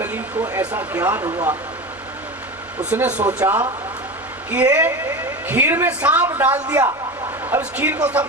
को ऐसा ज्ञान हुआ, उसने सोचा कि ये खीर में सांप डाल दिया, अब इस खीर को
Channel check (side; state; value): both; normal; correlation 0.26